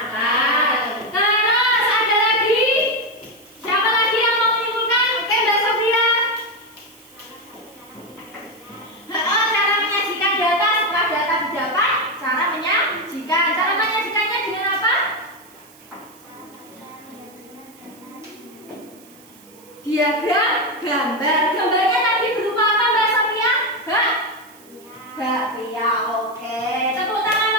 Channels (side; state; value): right; noise; hiss, 25 dB below the sound